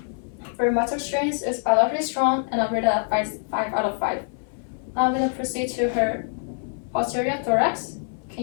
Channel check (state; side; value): silent; right; 62 dB below the other